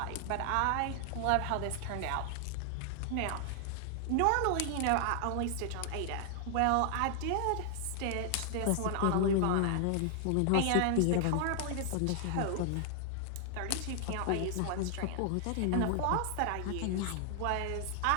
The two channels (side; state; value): both; different; correlation 0.00